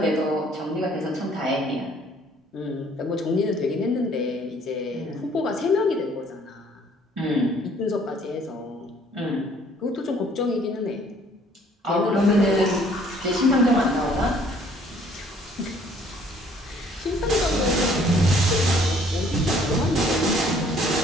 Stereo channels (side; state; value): both; normal; correlation 0.60